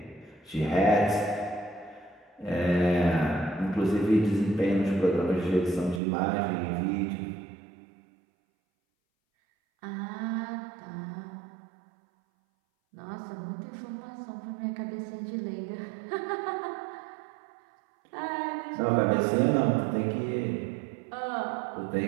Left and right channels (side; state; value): left; drops out; at 6.0 s